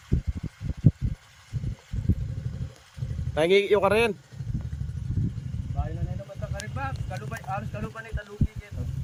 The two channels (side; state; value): both; identical; correlation 1.00